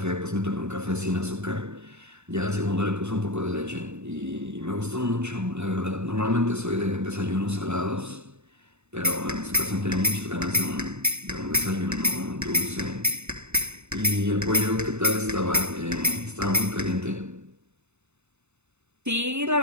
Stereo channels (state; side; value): late; left; 0.82 ms